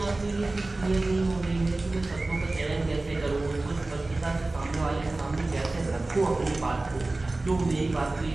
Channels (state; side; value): quieter; left; 3.1 dB